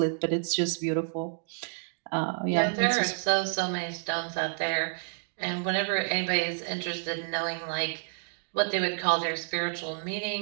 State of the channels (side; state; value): left; silent; digital silence